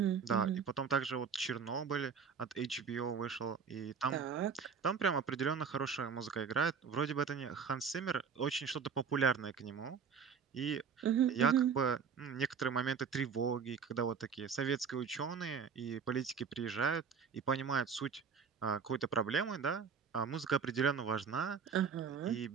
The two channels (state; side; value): quieter; left; 6.4 dB